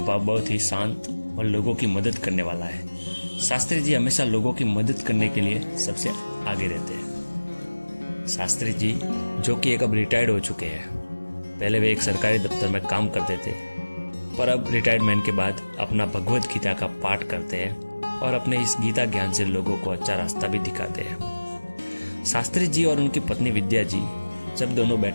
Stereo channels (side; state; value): both; inverted; correlation -1.00